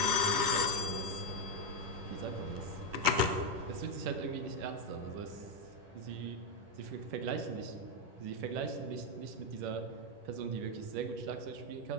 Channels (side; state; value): left; late; 10 ms